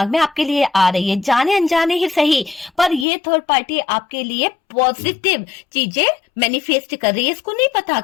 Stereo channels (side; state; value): right; drops out; at 3.1 s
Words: में आपके लिए आ रही है, जाने अनजाने ही सही, पर ये थर्ड पार्टी आपके लिए पॉजिटिव चीजें मैनिफेस्ट कर रही है। इसको नहीं पता